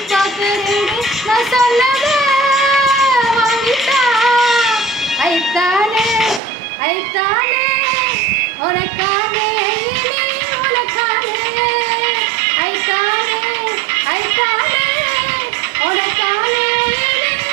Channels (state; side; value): drops out; left; at 6.4 s